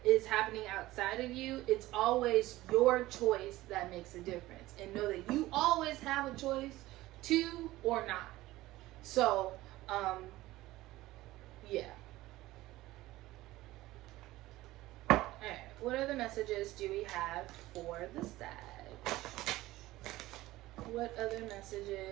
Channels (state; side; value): quieter; left; 17.3 dB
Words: is happening outside of you, it's always your choice that makes a difference. And know that you always have a choice to or not. So, yeah. Alright, what other messages do we have for the Sag? What other